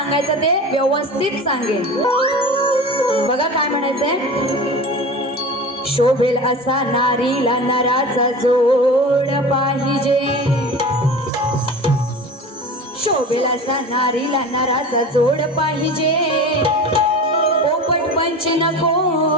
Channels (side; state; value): both; normal; correlation 0.33